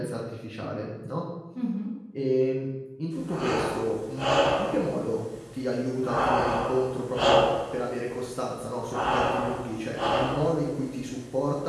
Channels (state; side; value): identical; both; correlation 1.00